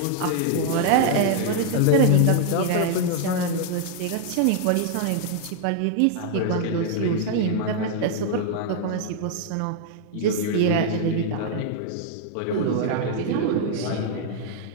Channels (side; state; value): both; different; correlation 0.00